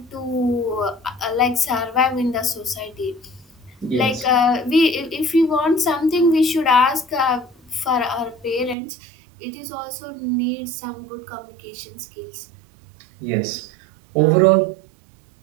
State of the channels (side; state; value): left; drops out; at 8.8 s